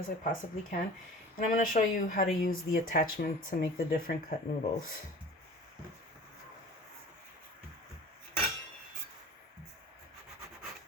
I possibly can. And I'm going to show you how to use the attachment to make the different cut noodles.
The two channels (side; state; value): both; normal; correlation 0.42